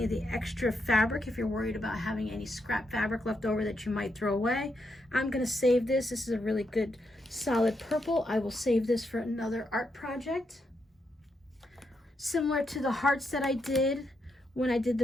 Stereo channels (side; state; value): both; normal; correlation 0.81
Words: of the extra fabric if you're worried about having any scrap fabric left over that you might throw away. I'm going to save this. This is a really good solid purple. I will save this for another art project. Similar to the hearts that I did when I did